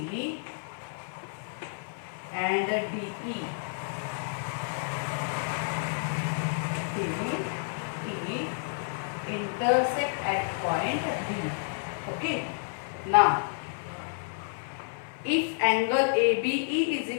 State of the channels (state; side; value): silent; right; 58 dB below the other